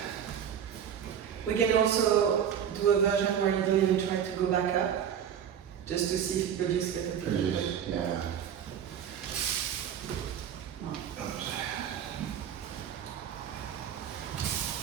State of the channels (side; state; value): left; quieter; 8.7 dB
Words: We can also do a version where you don't even try to go back up, just to see if it produces better Produce, pivot. yeah.